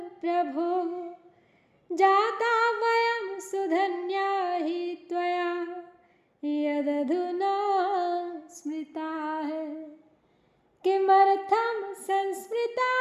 प्रभो जाता वयं सुधन्या हि त्वया यदधुना स्मृताः किमर्थं संस्मृता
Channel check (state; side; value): identical; both; correlation 1.00